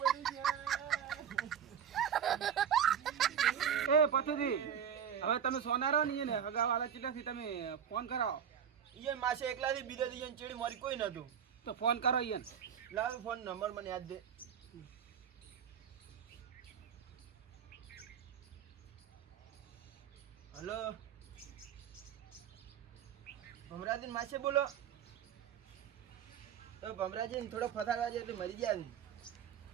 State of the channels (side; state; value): left; quieter; 8.3 dB